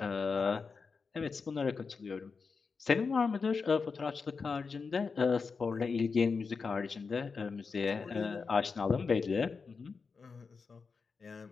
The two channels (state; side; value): quieter; right; 5.0 dB